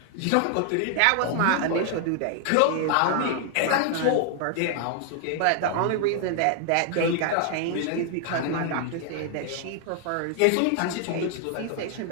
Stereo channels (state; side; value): different; both; correlation 0.00